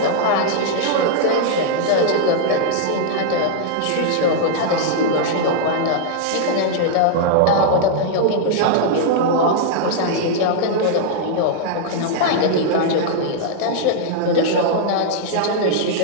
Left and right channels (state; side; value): different; both; correlation -0.01